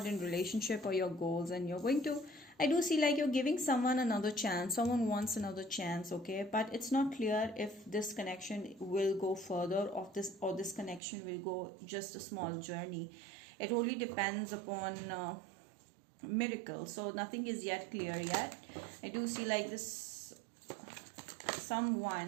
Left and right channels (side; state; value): left; drops out; at 11.0 s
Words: in relationship or your goals, and you're going to, I do see like you're giving someone another chance. Someone wants another chance, okay? But it's not clear if this connection will go further or this connection will go just a small journey. It only depends upon miracle. So nothing is yet clear yet. I do see like this